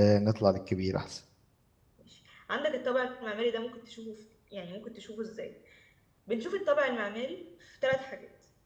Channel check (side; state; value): both; identical; correlation 1.00